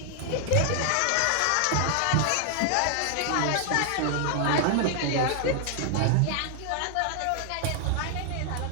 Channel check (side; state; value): both; different; correlation 0.00